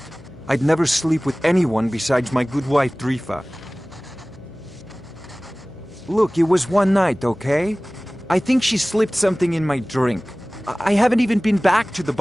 I'd never sleep with anyone besides my good wife, Drifa. Look, it was one night, okay? I think she slipped something in my drink. I haven't even been back to the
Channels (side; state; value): left; noise; hum, 21 dB below the sound